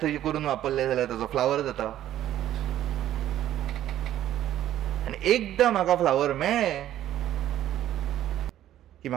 थंय करून वापरले जाल्यार ताजो फ्लावर जाता. आनी एकदां म्हाका फ्लावर मेळ्ळें की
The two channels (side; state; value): left; quieter; 12.3 dB